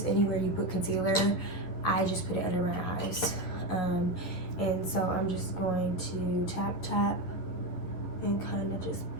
anywhere you put concealer. I just put it under my eyes. And so I'm just going to tap and kind of just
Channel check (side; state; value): right; late; 11 ms